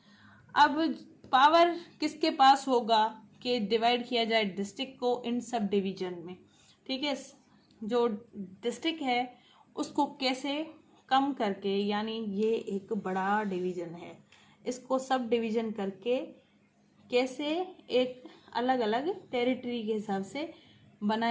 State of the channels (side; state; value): both; identical; correlation 1.00